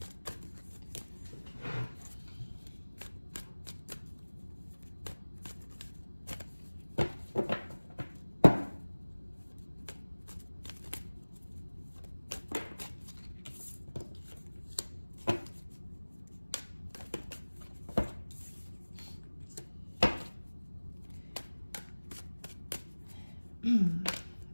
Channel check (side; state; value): both; inverted; correlation -1.00